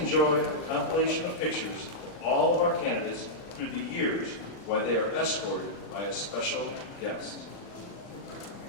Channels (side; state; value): right; late; 40 ms